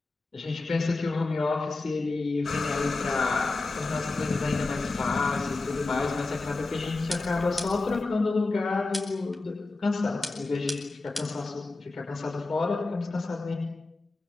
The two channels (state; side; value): quieter; right; 3.4 dB